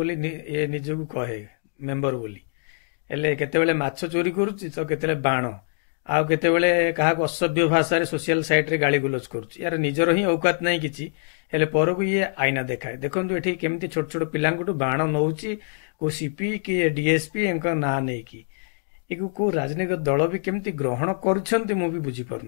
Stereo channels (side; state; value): right; silent; digital silence